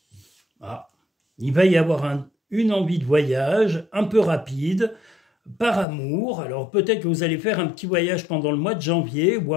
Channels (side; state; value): right; drops out; at 5.9 s